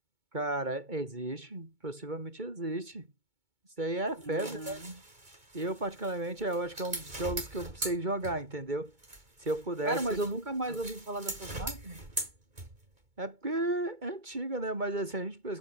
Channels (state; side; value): late; left; 2.2 ms